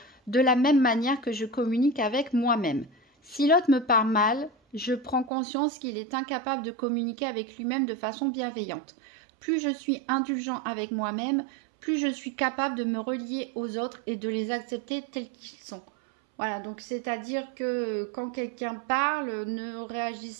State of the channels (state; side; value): drops out; left; at 5.3 s